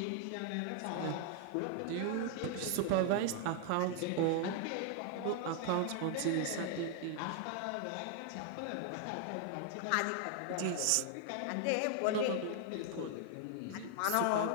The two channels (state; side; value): different; both; correlation 0.00